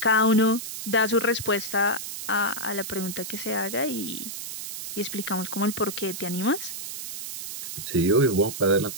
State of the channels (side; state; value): right; noise; hiss, 8 dB below the sound